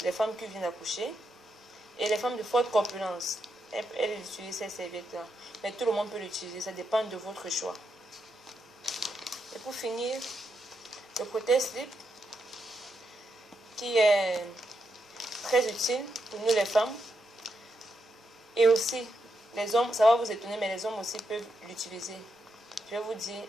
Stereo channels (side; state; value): both; normal; correlation 0.83